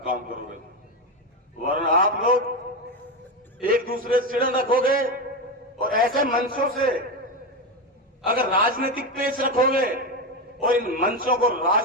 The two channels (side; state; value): both; normal; correlation 0.14